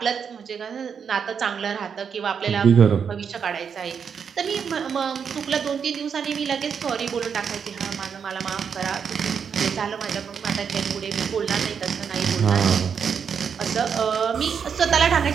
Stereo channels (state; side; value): quieter; left; 6.9 dB